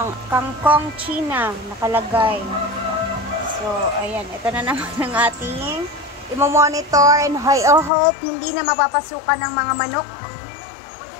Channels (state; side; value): drops out; right; at 7.9 s